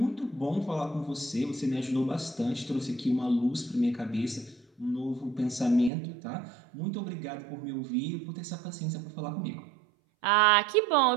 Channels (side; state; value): left; drops out; at 5.9 s